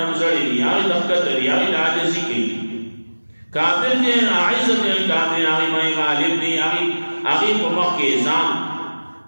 زڑے دی آئی دفکت دی آئی عاجزی کی کافر دے اعزۃ علی الکافرین آئی مائی غالب دی آئی پمک کے ازان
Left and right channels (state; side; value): inverted; both; correlation -1.00